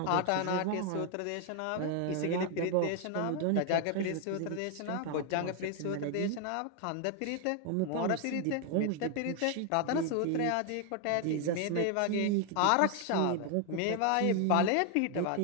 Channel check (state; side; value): different; both; correlation 0.00